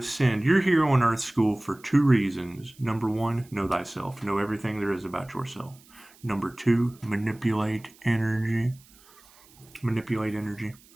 You're here on Earth School for 2 reasons. Number 1, know thyself. Know everything there is about yourself. Number 2, manipulate energy. Manipulate energy.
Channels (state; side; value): noise; right; hiss, 27 dB below the sound